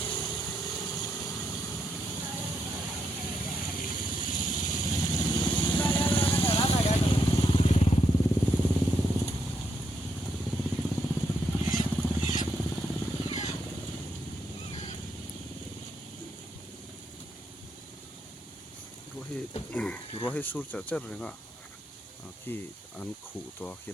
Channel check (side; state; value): both; normal; correlation 0.79